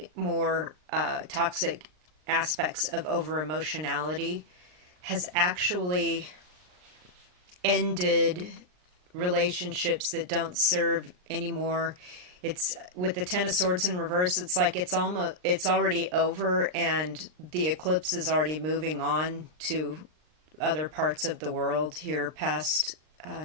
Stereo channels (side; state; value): left; late; 39 ms